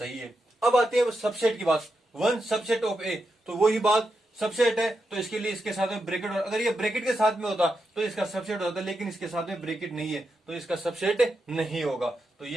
है। अब आती है सबसेट की बात, वन सबसेट ऑफ ए, तो वही बात सबसेट है तो इसके लिए इसके साथ में ब्रैकेट, अगर ये ब्रैकेट के साथ में होता तो इसका सबसेट होता, लेकिन इसके साथ में ब्रैकेट नहीं है तो इसका सबसेट नहीं होगा, तो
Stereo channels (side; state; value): both; normal; correlation 0.86